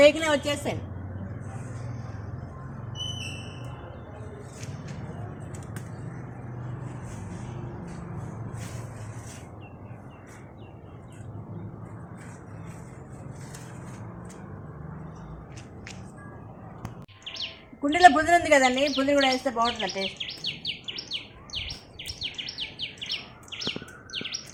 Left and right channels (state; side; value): identical; both; correlation 1.00